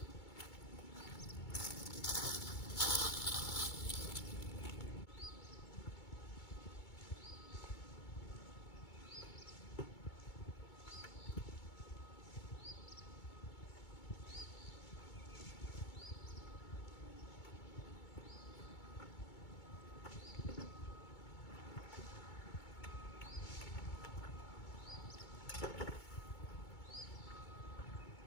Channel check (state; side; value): late; right; 2.2 ms